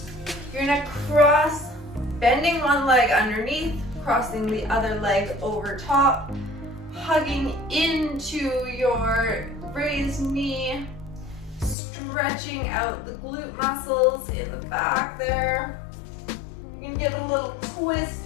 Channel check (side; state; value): right; drops out; at 11.8 s